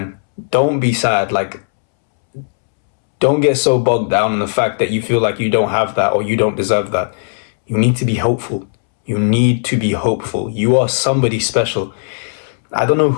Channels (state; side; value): silent; right; 69 dB below the other